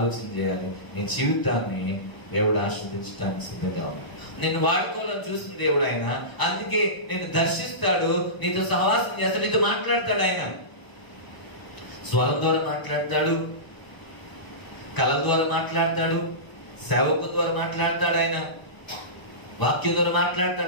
చేయాలి, నీ జీవితాన్ని దేవుడు ఆశీర్వదించడానికి సిద్ధంగా ఉన్నాడు. నిన్ను వాడుకోవాలని చూసిన దేవుడు ఆయన. అందుకే నిన్ను దర్శిస్తాడు, నీతో సహవాసం చేస్తాడు, నీతో మాట్లాడతాడు. ఆయన స్వరం ద్వారా మాట్లాడతాడు, కళ ద్వారా మాట్లాడతాడు, సేవకు ద్వారా మాట్లాడతాడు, ఆయన వాక్యం ద్వారా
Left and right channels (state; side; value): late; right; 1.0 ms